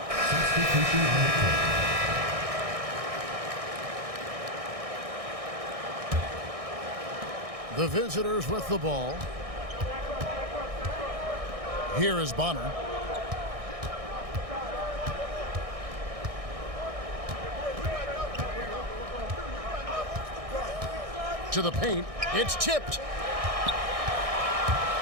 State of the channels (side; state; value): left; late; 1.6 ms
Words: substitution on the court. The visitors with the ball. Here is Bonner. To the paint. It's tipped.